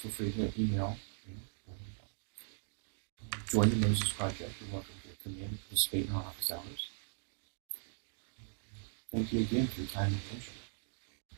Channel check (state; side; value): silent; left; digital silence